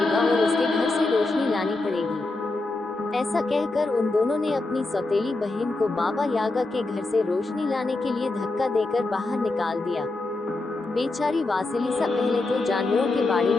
और उसके घर से रोशनी लानी पड़ेगी। ऐसा कहकर उन दोनों ने अपनी सौतेली बहन को बाबा यागा के घर से रोशनी लाने के लिए धक्का देकर बाहर निकाल दिया। बेचारी वासिलिसा पहले तो जानवरों के बाड़ी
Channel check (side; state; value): right; quieter; 3.1 dB